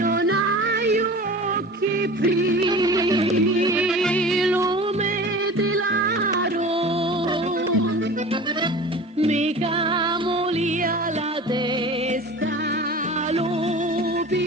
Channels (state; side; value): normal; both; correlation 0.38